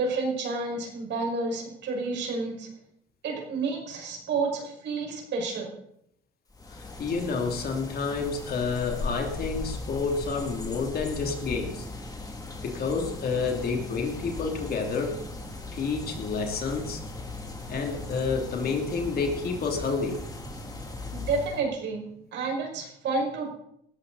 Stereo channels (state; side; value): normal; both; correlation 0.36